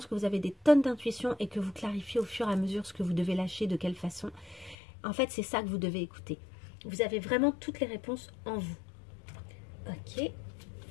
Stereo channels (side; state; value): right; drops out; at 4.8 s